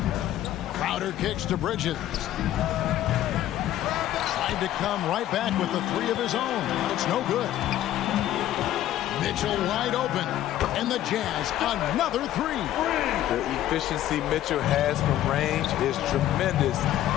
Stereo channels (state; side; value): quieter; right; 12.9 dB